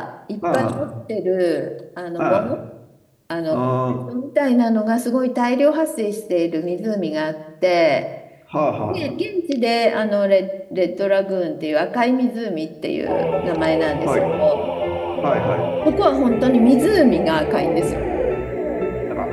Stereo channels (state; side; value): identical; both; correlation 1.00